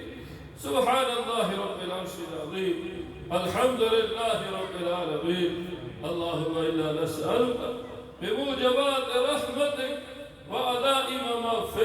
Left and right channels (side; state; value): both; identical; correlation 1.00